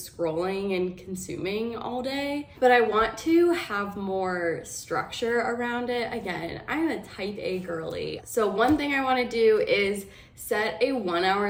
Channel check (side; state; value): both; identical; correlation 1.00